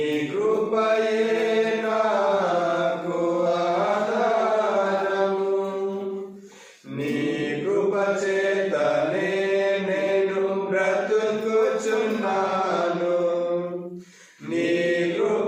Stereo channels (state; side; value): identical; both; correlation 1.00